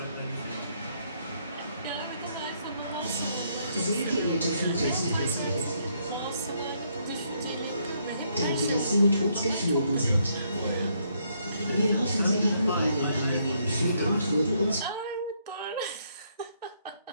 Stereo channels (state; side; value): inverted; both; correlation -0.73